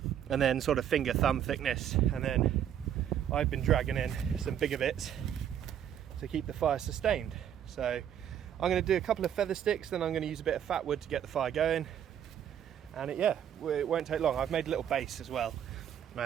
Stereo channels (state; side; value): quieter; left; 9.6 dB